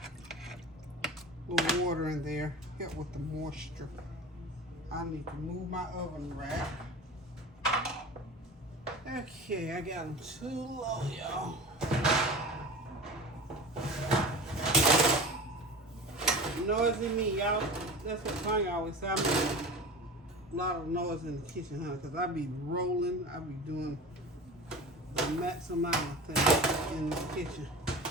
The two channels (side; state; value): both; normal; correlation 0.34